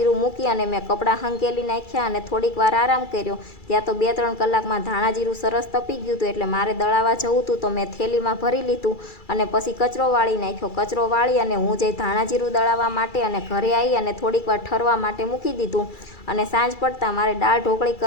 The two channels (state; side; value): late; right; 2.3 ms